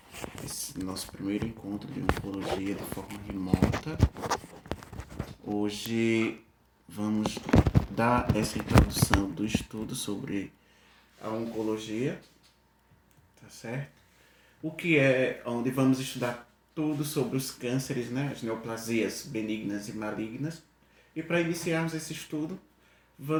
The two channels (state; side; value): identical; both; correlation 1.00